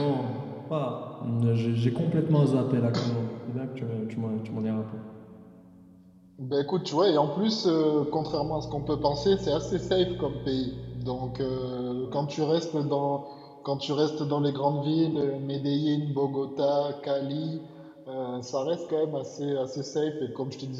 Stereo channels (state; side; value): identical; both; correlation 1.00